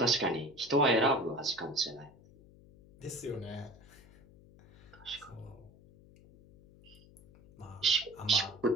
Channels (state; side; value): noise; left; hum, 24 dB below the sound